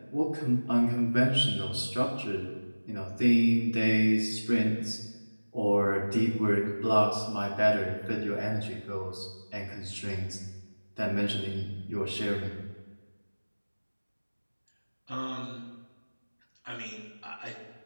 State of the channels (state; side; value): inverted; both; correlation -1.00